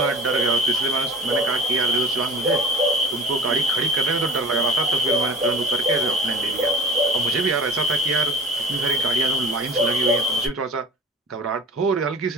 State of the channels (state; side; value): normal; both; correlation 0.39